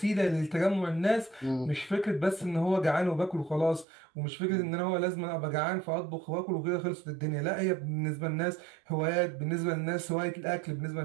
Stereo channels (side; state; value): left; drops out; at 3.9 s